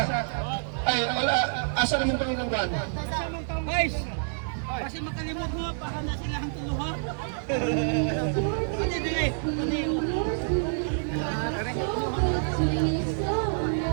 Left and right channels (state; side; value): silent; left; digital silence